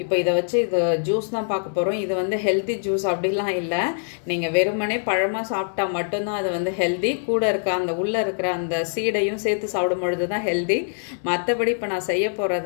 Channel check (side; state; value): right; silent; digital silence